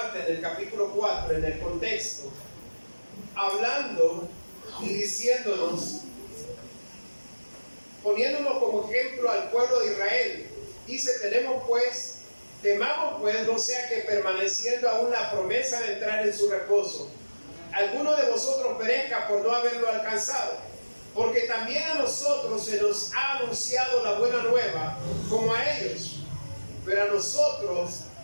del capítulo 4 en el contexto, hablando y diciéndonos, poniéndonos como ejemplo al pueblo de Israel. Dice, temamos pues, no sea que permaneciendo aún la promesa de entrar en su reposo, alguno de vosotros perezca por no haberlo alcanzado. Porque también a nosotros se nos ha anunciado la buena nueva, como a ellos.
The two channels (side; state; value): both; inverted; correlation -1.00